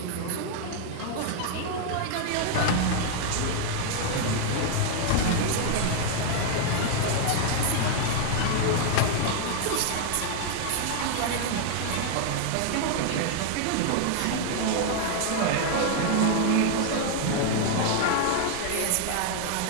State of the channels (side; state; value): both; different; correlation 0.00